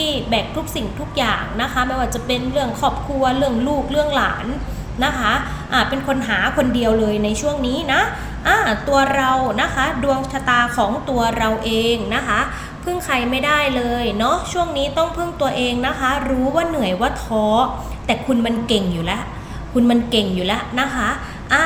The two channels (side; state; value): both; identical; correlation 1.00